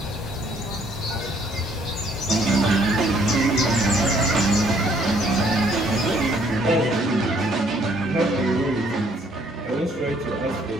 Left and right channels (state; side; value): normal; both; correlation 0.64